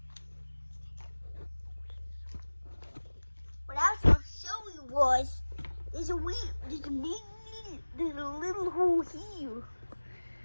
What I was going to show you was there's a little hole here.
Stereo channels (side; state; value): both; inverted; correlation -1.00